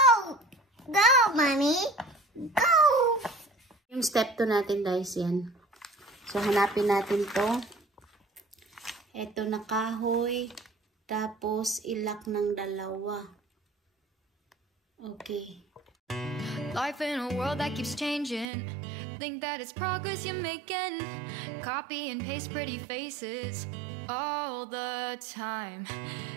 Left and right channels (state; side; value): drops out; left; at 18.5 s